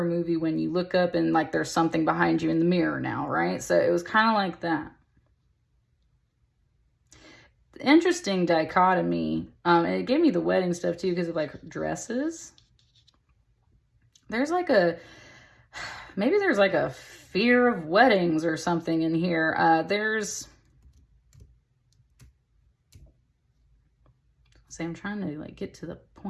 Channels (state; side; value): identical; both; correlation 1.00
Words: movie when you look up and like there's something behind you in the mirror now, right? So it was kind of like that. Interesting dichotomy. And it gave me the wedding stuff too because of like dresses. There's like maybe there's like a fear of weddings or something in here. I'm trying to like get to the